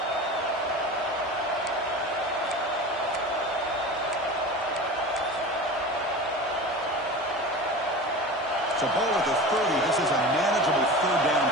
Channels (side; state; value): both; normal; correlation 0.32